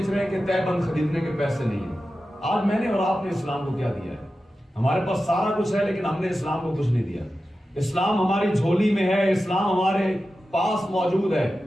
رہے ہیں کہ تہ بند خریدنے کے پیسے نہیں ہیں. آج میں نے اور آپ نے اسلام کو کیا دیا ہے؟ ہمارے پاس سارا کچھ ہے، لیکن ہم نے اسلام کو کچھ نہیں دیا. اسلام ہماری جھولی میں ہے، اسلام ہمارے پاس موجود ہے،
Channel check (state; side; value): normal; both; correlation 0.93